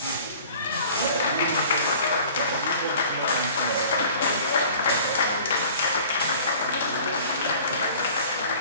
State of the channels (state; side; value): inverted; both; correlation -0.47